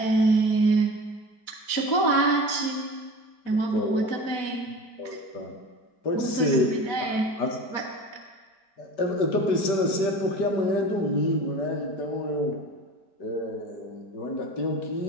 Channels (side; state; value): right; late; 5.1 ms